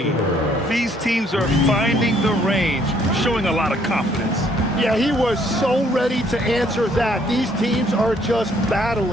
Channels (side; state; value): both; normal; correlation 0.65